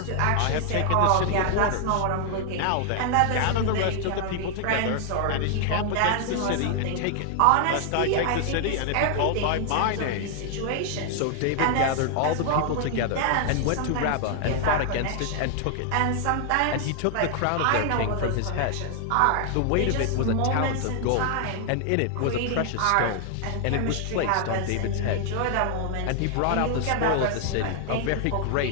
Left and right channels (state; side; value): different; both; correlation 0.00